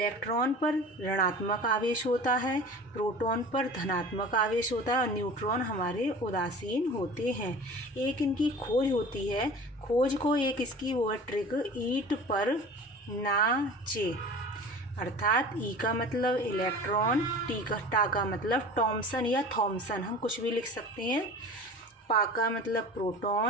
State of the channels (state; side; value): normal; both; correlation 0.39